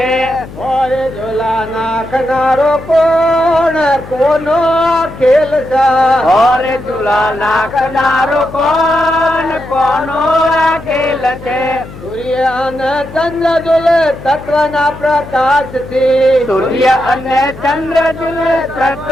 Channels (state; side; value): noise; left; hum, 16 dB below the sound